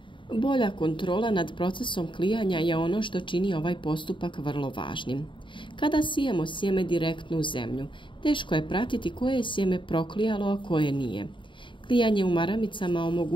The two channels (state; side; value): late; right; 0.24 ms